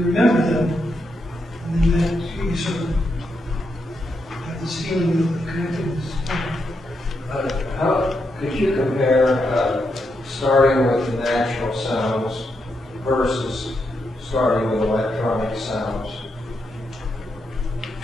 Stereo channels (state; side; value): normal; both; correlation 0.82